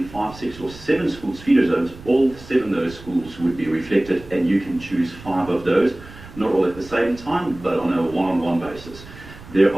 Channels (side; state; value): right; noise; rumble, 18 dB below the sound